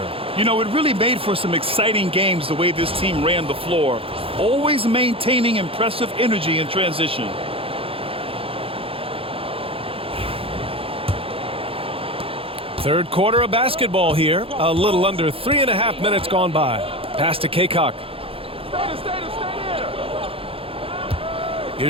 You know, it really made for some exciting games the way this team ran the floor, always maintaining impressive energy in transition. Third quarter of basketball here. A little under 3.5 minutes gone by. Pass to Kaycock.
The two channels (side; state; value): left; late; 0.27 ms